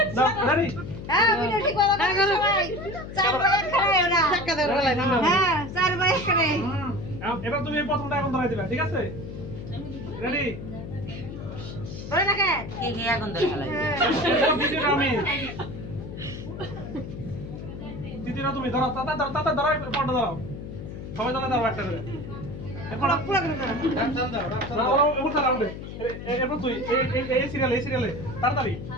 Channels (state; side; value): noise; left; hum, 10 dB below the sound